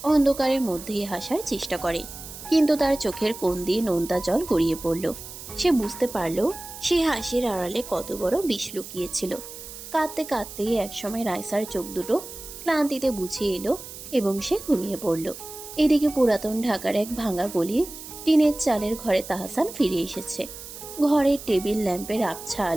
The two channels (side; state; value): right; noise; hiss, 13 dB below the sound